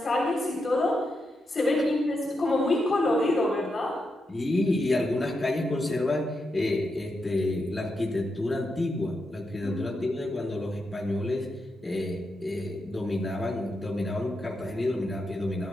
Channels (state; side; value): normal; both; correlation 0.85